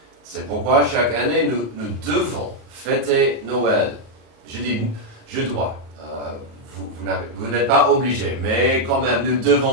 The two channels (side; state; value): left; late; 37 ms